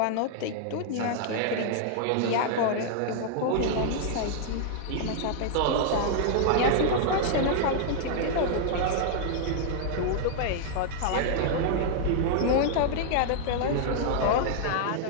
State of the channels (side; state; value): both; different; correlation -0.01